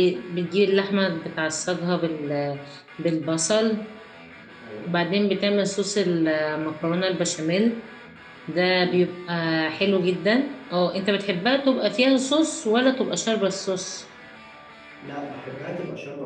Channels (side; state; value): both; identical; correlation 1.00